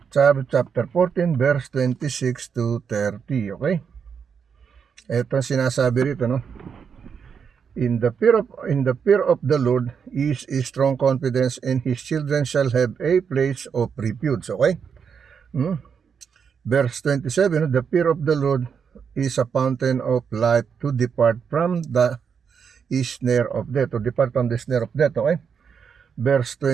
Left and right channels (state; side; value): quieter; left; 6.7 dB